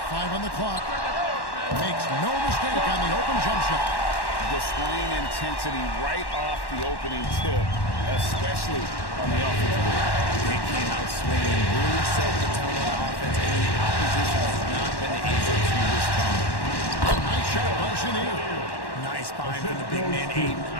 on the clock. Makes no mistake on the open jump shot. Displaying intensity right off the opening tip, especially on the offensive end. They came out swinging, really set the tone on offense, and the opposition has not been able to respond. Nice shot by Chenier. Nice find from the big man, Aiden.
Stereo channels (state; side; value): late; right; 1.1 ms